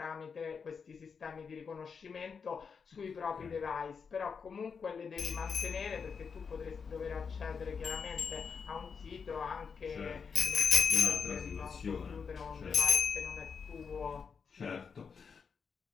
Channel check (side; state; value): right; quieter; 5.9 dB